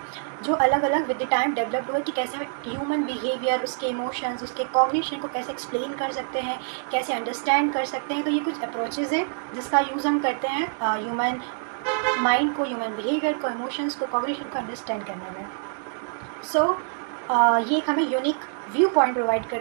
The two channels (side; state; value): left; silent; digital silence